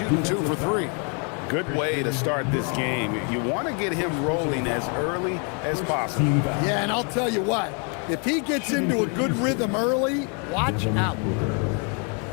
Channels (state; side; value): quieter; right; 37.4 dB